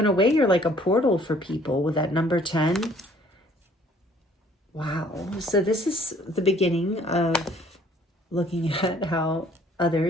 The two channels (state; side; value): normal; both; correlation 0.58